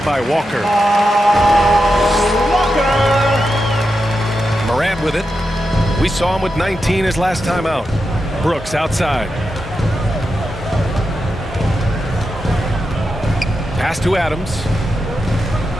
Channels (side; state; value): both; normal; correlation 0.88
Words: by Walker. Morant with it. We saw him with 19 his last time out. Brooks outside. Pass to Adams.